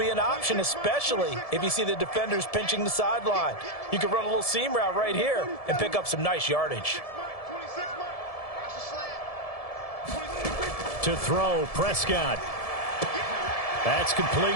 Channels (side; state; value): right; late; 1.7 ms